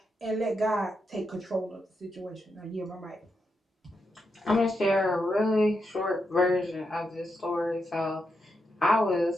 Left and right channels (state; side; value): normal; both; correlation 0.84